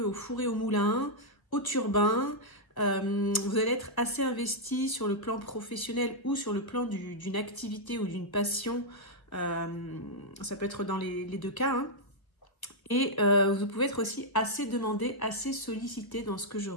au four et au moulin, au turbin. Vous allez être assez investi sur le plan professionnel ou sur le plan d'une activité ou d'une passion. Ça peut être dans les deux cas. Hein. Et vous pouvez être aussi assez demandé, assez sollicité dans ce que je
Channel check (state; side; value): late; right; 1.4 ms